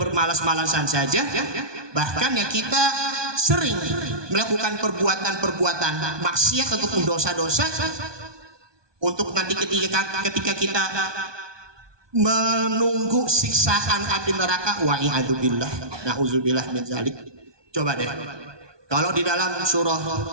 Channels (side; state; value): left; late; 1.2 ms